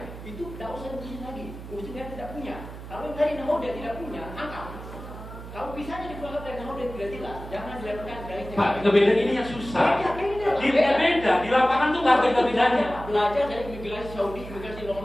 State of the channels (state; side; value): noise; right; hum, 12 dB below the sound